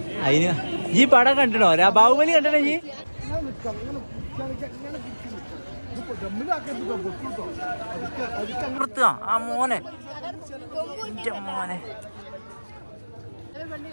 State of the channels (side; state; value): both; inverted; correlation -1.00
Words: അതിന് ഈ പടം കണ്ടിടോ? ബാഹുബലി കണ്ടിട്ടോ ഈ? ആ മോനെ, മോനെ